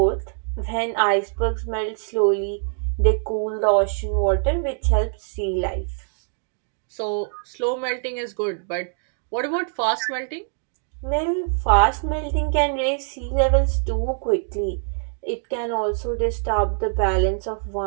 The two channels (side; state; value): left; silent; 63 dB below the other